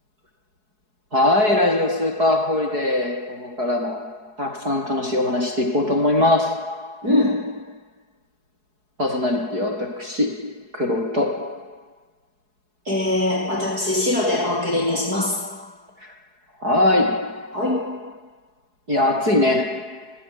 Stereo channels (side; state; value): left; late; 4.7 ms